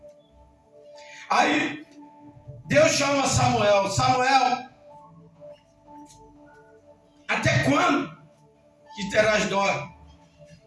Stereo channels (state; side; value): identical; both; correlation 1.00